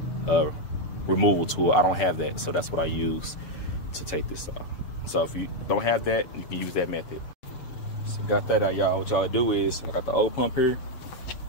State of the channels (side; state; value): right; late; 7.0 ms